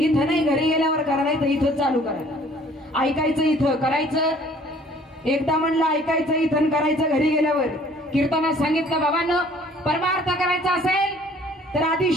नाही. घरी गेल्यावर करा नाही तर इथं चालू करायला. ऐकायचं इथं करायचं. एकदा म्हणलं ऐकायचं इथं करायचं घरी गेल्यावर. कीर्तनात सांगितलं बाबांनो परमार्थ करायचा असेल तर आधी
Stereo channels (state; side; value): normal; both; correlation 0.55